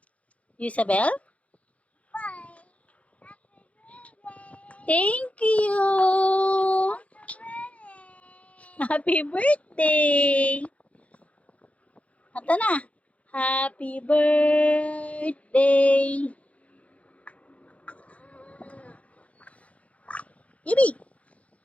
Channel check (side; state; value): right; late; 0.065 ms